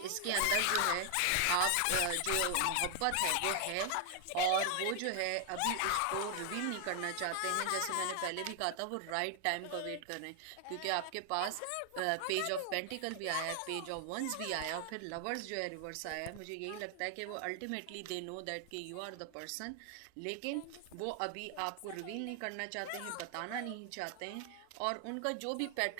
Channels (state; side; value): different; both; correlation 0.00